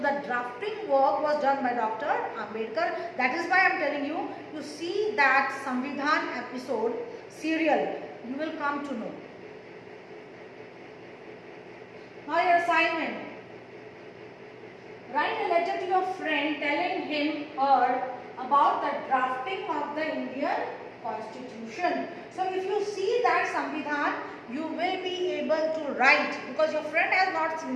drafting work was done by Dr. Ambedkar. That is why I am telling you, you see that Samvidhan episode, serial, you will come to know. Now your assignment. Write a letter to your friend telling him or about the drafting of the Indian Constitution. So if you see that Samvidhan, you will be able to write, because your friend has not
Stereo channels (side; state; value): both; identical; correlation 1.00